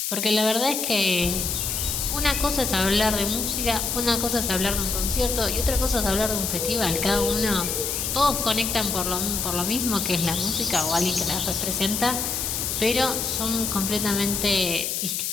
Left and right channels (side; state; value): left; noise; hiss, 1 dB below the sound